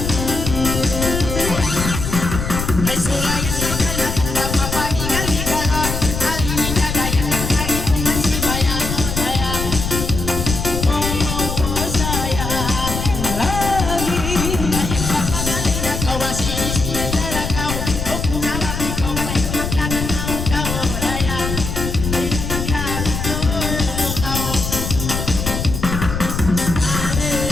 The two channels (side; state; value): left; noise; rumble, 4 dB below the sound